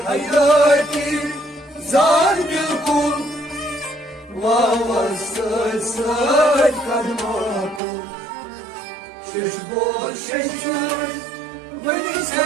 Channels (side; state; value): left; drops out; at 7.8 s